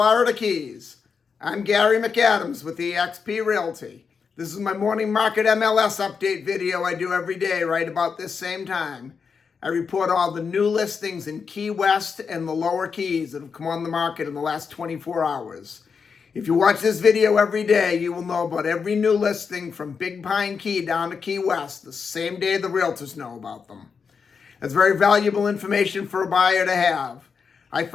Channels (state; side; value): quieter; right; 5.8 dB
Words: Keys. I'm Gary McAdams with eXp Realty. This is my morning market MLS update video I do every day right about this same time. I report all the new listings in Key West and the lower Keys that have come on the market in the last 24 hours. If you watch this video every day, you will know about every new listing from Big Pine Key down to Key West the same day the realtors know about them. That's very valuable information for a buyer to have. I